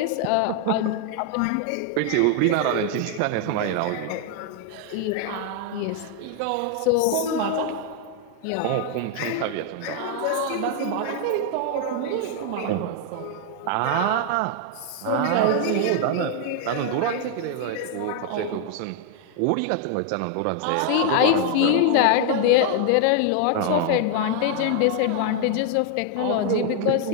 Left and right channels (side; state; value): both; different; correlation 0.00